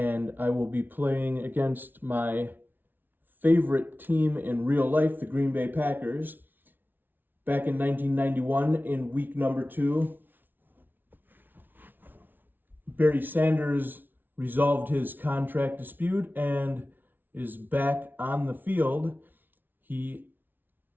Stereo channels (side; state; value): left; late; 0.091 ms